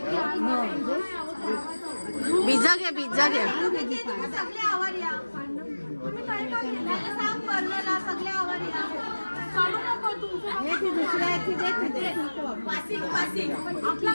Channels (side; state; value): both; inverted; correlation -1.00